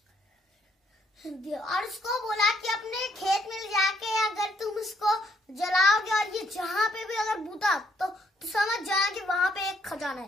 और उसको बोला कि अपने खेत में जाके अगर तुम इसको जलाओगे और ये जहाँ पे भी अगर बूता तो समझ जाना कि वहां पे एक खजाना है।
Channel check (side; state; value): both; normal; correlation 0.69